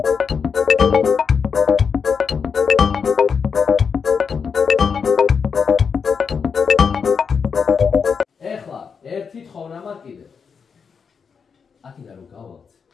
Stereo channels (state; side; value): quieter; right; 6.1 dB